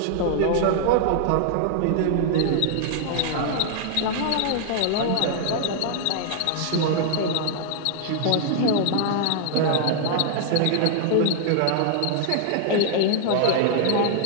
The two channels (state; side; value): different; both; correlation 0.00